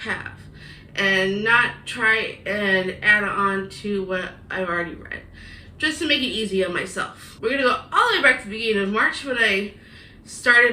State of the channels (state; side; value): identical; both; correlation 1.00